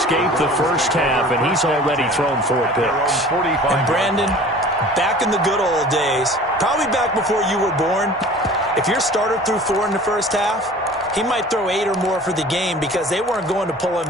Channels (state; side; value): normal; both; correlation 0.44